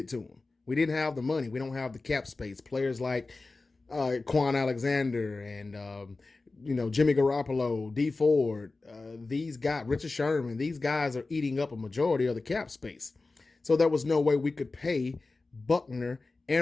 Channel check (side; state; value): right; quieter; 3.5 dB